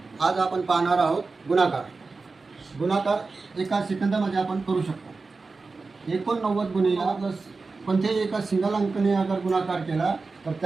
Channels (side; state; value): left; quieter; 4.0 dB